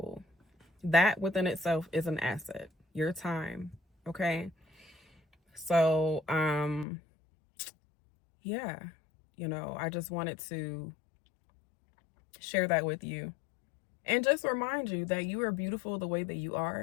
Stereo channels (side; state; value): right; drops out; at 6.9 s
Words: That within itself is an asset, your time. Okay. So, yeah, you know, I just wanted to share that with you and just remind you that you are beautiful the way that you